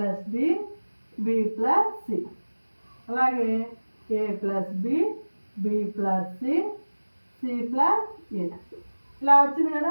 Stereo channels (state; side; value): inverted; both; correlation -1.00